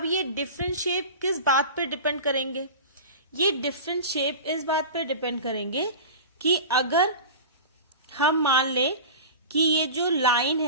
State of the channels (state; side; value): inverted; both; correlation -0.31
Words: ये डिफरेंट शेप किस बात पे डिपेंड करेंगे? ये डिफरेंट शेप इस बात पे डिपेंड करेंगे कि अगर हम मान लें कि ये जो लाइन